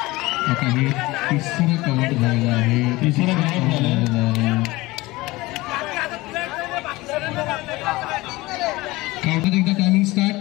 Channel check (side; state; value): right; quieter; 20.5 dB